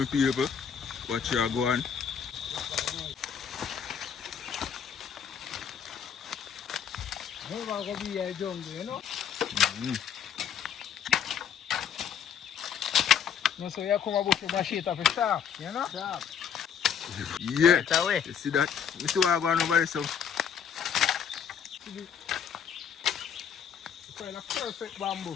people. Watch you go on. Never gonna be a jungle, you know. No, so you come about your machete for sharp, you know? Sharp. Yeah. Right away. You see that? You see what I'm going over there, so? It's kind of perfect bamboo.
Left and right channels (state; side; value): quieter; right; 8.0 dB